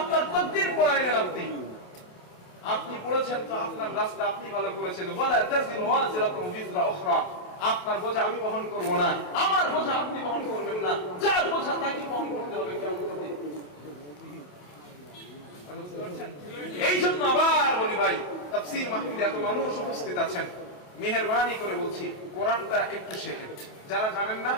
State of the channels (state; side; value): late; right; 28 ms